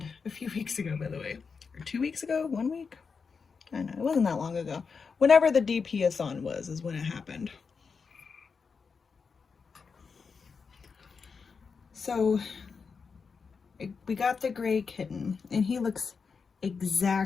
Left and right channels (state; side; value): quieter; right; 5.4 dB